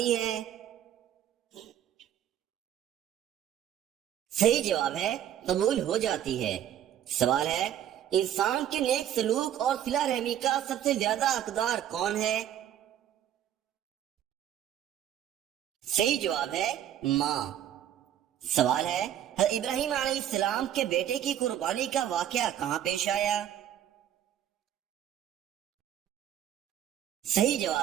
ہے؟ صحیح جواب ہے قبول ہو جاتی ہے۔ سوال ہے انسان کے نیک سلوک اور صلہ رحمی کا سب سے زیادہ حقدار کون ہے؟ صحیح جواب ہے ماں۔ سوال ہے حضرت ابراہیم علیہ السلام کے بیٹے کی قربانی کا واقعہ کہاں پیش آیا؟ صحیح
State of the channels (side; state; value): left; quieter; 10.7 dB